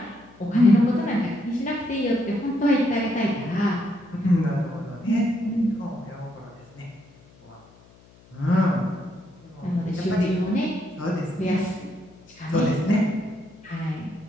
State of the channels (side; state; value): left; noise; hum, 26 dB below the sound